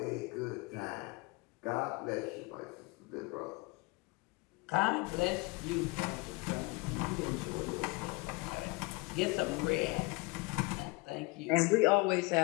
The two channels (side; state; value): right; quieter; 25.7 dB